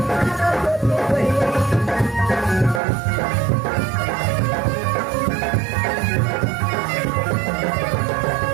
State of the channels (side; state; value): left; drops out; at 2.8 s